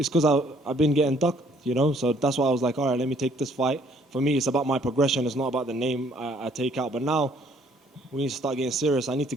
because I've been getting ducked, you know, so that's why I was like, all right, let me take this fight. For me, it's about my progression. It's not about the name I take out. But now we need to start getting serious. I need to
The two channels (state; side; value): normal; both; correlation 0.62